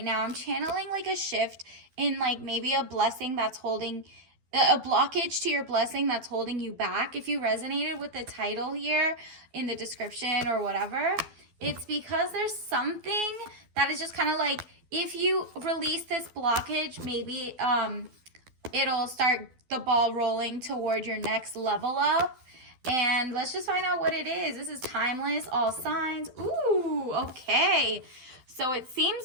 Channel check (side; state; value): left; late; 12 ms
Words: now? I'm channeling like a shift in like maybe a blessing that's holding a blockage to your blessing that's holding you back. If you resonated with the title here in the description or whatever, it's because there's something that is just kind of like, if you release this blockage, maybe it'll start the ball rolling toward your next level up. And let's just find out what it is. This is timeless, all signs. Ooh, okay. So it seems